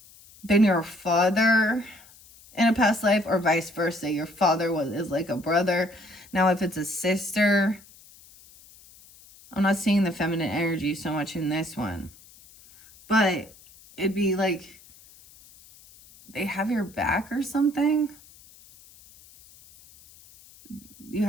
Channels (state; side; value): noise; left; hiss, 24 dB below the sound